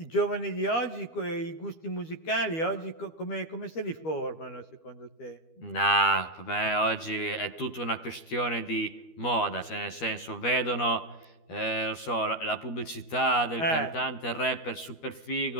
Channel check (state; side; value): late; right; 12 ms